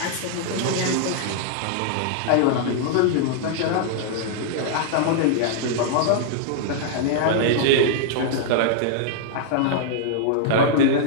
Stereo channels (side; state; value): both; different; correlation -0.01